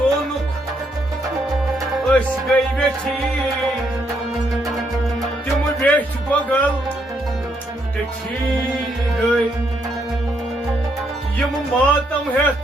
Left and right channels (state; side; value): normal; both; correlation 0.74